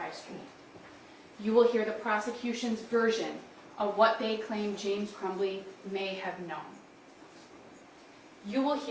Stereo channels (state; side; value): identical; both; correlation 1.00